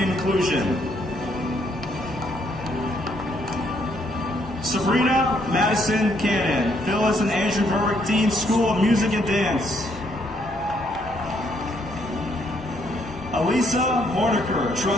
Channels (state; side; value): normal; both; correlation 0.71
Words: and Inclusion. Sabrina Madison Cannon, Phyllis and Andrew Berwick, Dean, School of Music and Dance. Elisa Morniker,